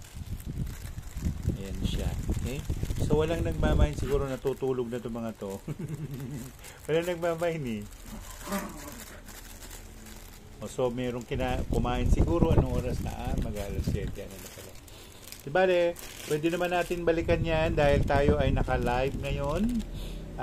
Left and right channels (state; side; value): identical; both; correlation 1.00